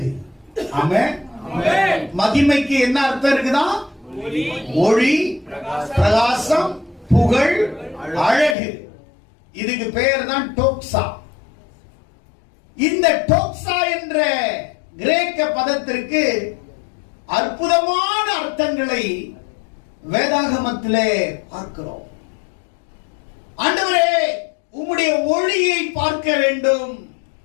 ஆமென். மகிமைக்கு என்ன அர்த்தம் இருக்குதா? ஒளி, பிரகாசம், புகழ், அழகு. இதுக்கு பெயர் தான் டோக்ஸா. இந்த டோக்ஸா என்ற கிரேக்க பதத்திற்கு அற்புதமான அர்த்தங்களை வேதாகமத்திலே பார்க்கிறோம். ஆண்டவரே, உம்முடைய ஒளியை பார்க்க வேண்டும்,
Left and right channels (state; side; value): drops out; right; at 8.6 s